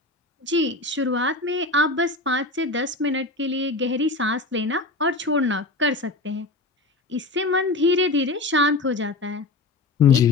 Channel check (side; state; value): right; quieter; 3.1 dB